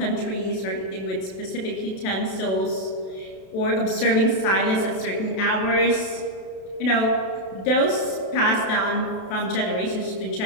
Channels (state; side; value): late; right; 32 ms